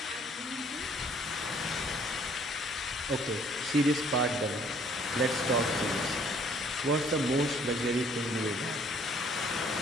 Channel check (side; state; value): both; normal; correlation 0.60